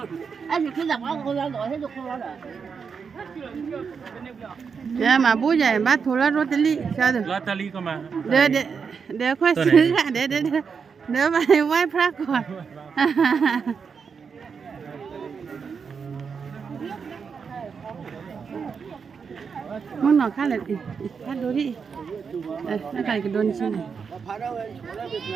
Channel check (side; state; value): left; quieter; 6.0 dB